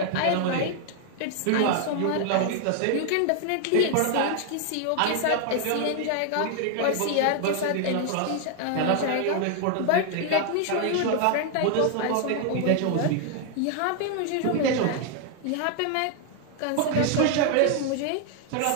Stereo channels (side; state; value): both; different; correlation 0.00